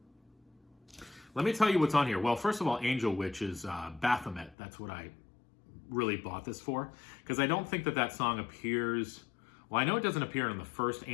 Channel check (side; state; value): right; drops out; at 4.5 s